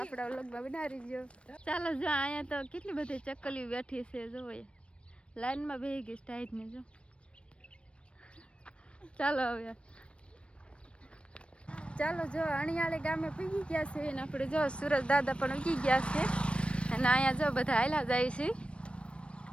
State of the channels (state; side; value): late; right; 0.059 ms